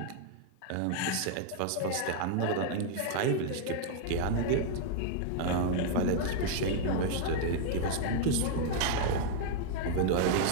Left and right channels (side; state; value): both; different; correlation 0.00